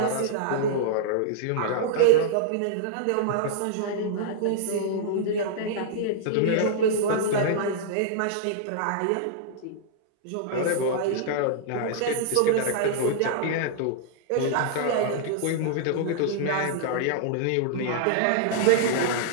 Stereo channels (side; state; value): both; different; correlation -0.02